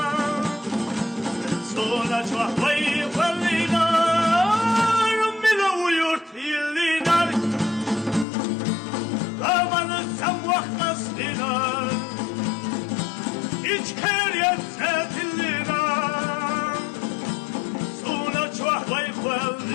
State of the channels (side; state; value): right; drops out; at 8.2 s